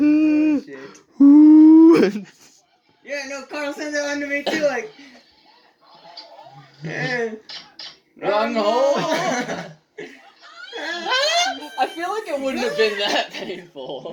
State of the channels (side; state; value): both; identical; correlation 1.00